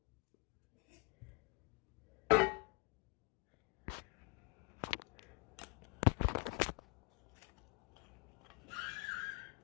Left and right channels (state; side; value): quieter; right; 30.2 dB